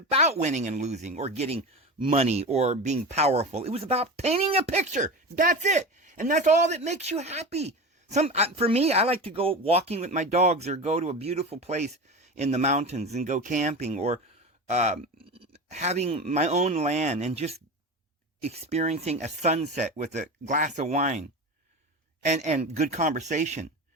winning and losing or getting money or being powerful. It was about painting a picture. That's it. And that's all that makes you happy. For me, I like to go walking with my dogs or go to a beautiful place in the mountains and go camping or having my own land and just experiencing a sunset with a glass of wine and good conversation.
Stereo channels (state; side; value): normal; both; correlation 0.27